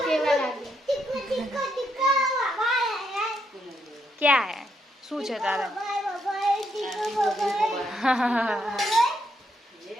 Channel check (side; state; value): both; normal; correlation 0.77